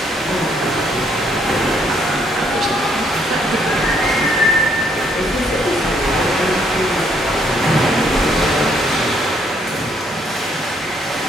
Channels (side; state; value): both; normal; correlation 0.69